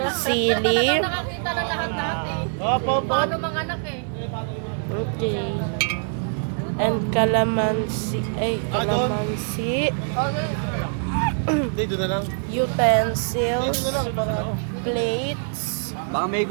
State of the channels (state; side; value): silent; left; 63 dB below the other